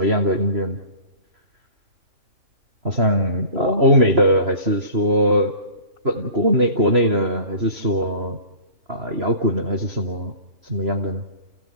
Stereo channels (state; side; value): late; left; 3.0 ms